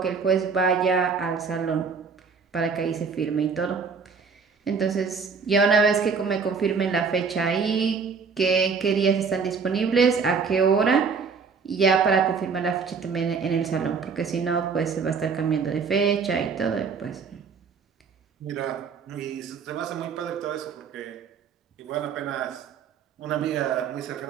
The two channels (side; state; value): left; quieter; 5.5 dB